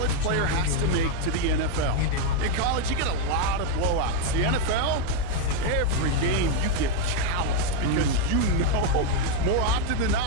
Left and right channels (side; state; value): both; different; correlation 0.01